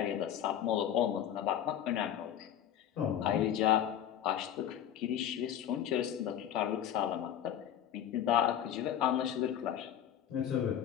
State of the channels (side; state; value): right; quieter; 10.3 dB